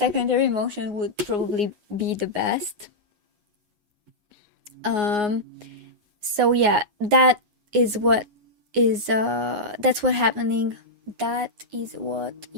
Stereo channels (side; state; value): left; late; 9.6 ms